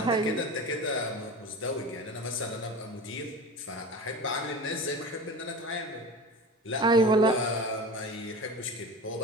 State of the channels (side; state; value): both; normal; correlation 0.32